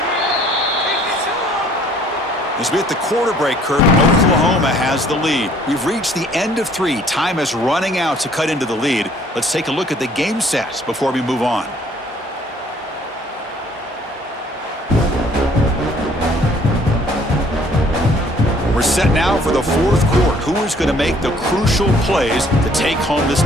As we hit the quarter break, Kurt, Oklahoma has the lead. We've reached the end of 3. Time is running out to cut into the lead. Let's take a look at the game stats before we move on. We're set now for the 4th quarter. Who is going to make the crucial plays to take home this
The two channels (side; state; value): both; normal; correlation 0.59